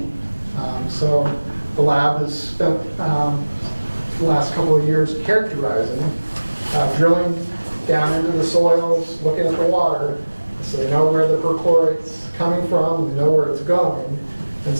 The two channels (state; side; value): inverted; both; correlation -1.00